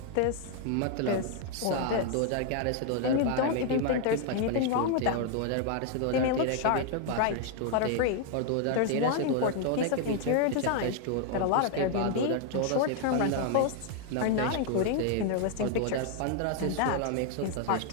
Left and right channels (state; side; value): different; both; correlation 0.00